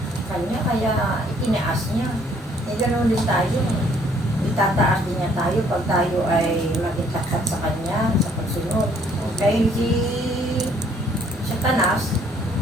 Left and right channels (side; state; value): both; normal; correlation 0.63